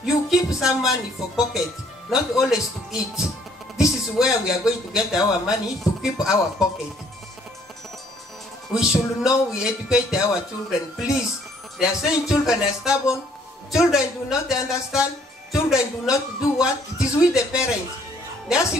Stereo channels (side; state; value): both; normal; correlation 0.63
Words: you keep some money for pocket, not always to eat. This is where we are going to get our money, to keep our pocket. We should know we educate our children. Please, they are saying children are stubborn. Children do not understand. Children do not do what? It is with the parents. Let's